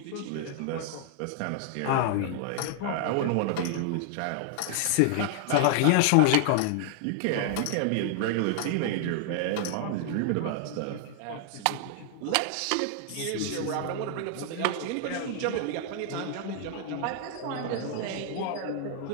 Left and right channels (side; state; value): both; different; correlation 0.00